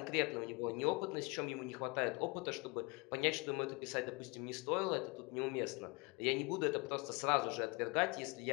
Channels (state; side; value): quieter; right; 27.3 dB